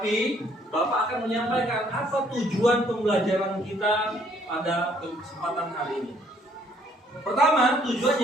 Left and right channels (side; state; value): both; normal; correlation 0.64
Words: Bapak akan menyampaikan apa tujuan pembelajaran kita pada kesempatan hari ini. Pertama,